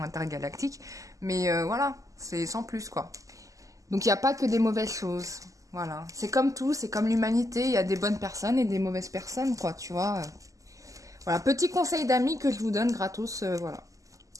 intergalactiques. Mais voilà, c'est sans plus, quoi. Donc, il n'y a pas que des mauvaises choses. Voilà. C'est comme tout, c'est comme l'humanité. Il y a des bonnes personnes et des mauvaises personnes, quoi, tu vois. Voilà, petit conseil d'amis que je vous donne gratos, voilà.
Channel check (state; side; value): late; left; 0.16 ms